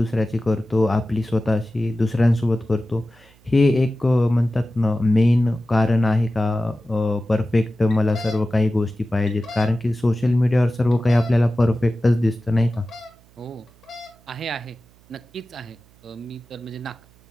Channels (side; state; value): right; noise; hum, 29 dB below the sound